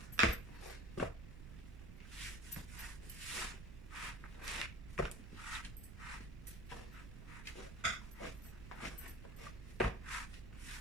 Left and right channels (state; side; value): noise; right; rumble, 10 dB below the sound